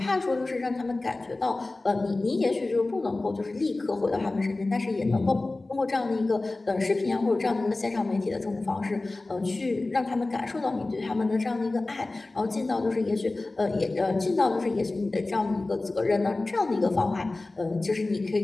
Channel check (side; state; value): right; quieter; 3.1 dB